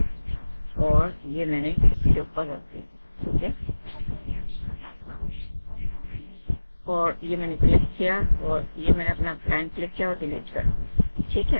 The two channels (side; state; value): both; inverted; correlation -1.00